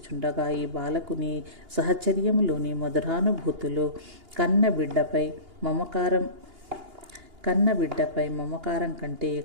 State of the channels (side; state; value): left; late; 2.8 ms